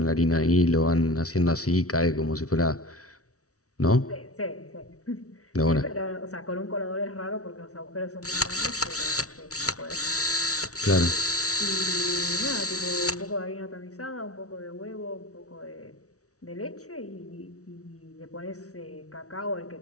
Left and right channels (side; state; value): right; late; 0.65 ms